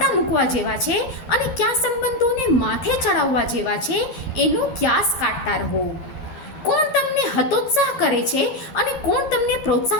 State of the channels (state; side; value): late; right; 13 ms